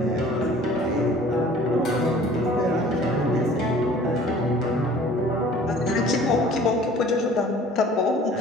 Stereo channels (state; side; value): normal; both; correlation 0.49